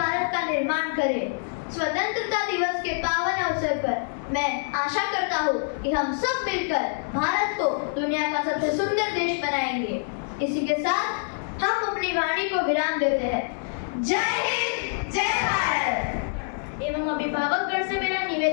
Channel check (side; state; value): right; silent; digital silence